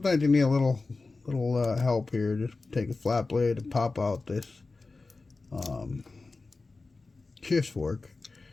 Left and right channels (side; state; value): right; quieter; 3.7 dB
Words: you need a little help here. Just take a flat blade and pop out this shift fork.